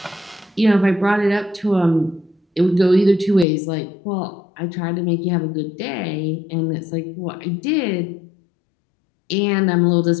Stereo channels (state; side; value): drops out; right; at 3.5 s